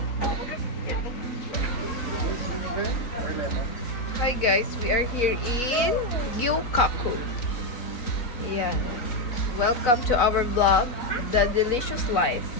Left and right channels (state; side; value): late; right; 3.9 ms